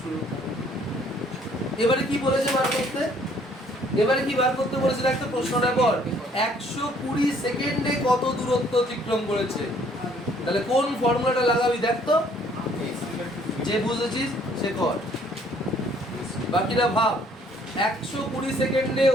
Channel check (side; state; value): both; normal; correlation 0.61